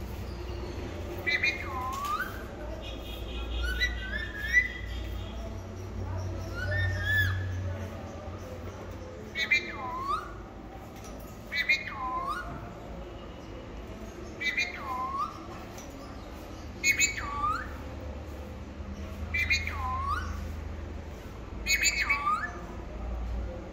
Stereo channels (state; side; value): identical; both; correlation 1.00